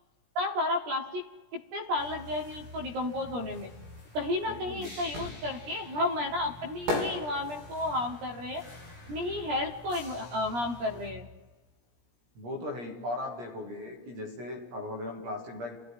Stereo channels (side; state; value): left; late; 17 ms